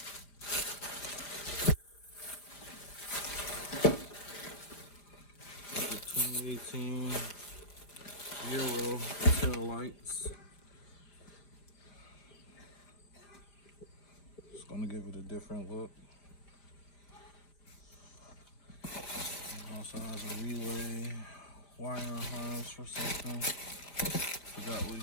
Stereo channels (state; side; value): late; right; 5.0 ms